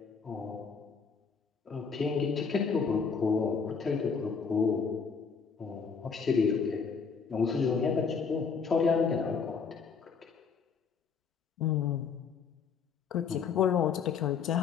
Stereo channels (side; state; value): right; quieter; 5.8 dB